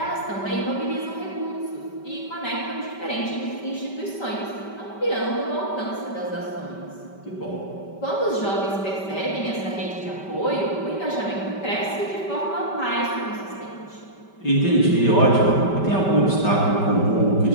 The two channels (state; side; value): late; right; 5.2 ms